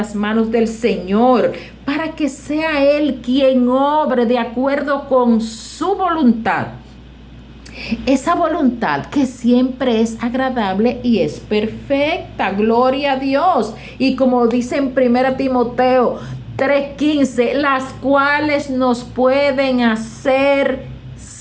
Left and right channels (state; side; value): identical; both; correlation 1.00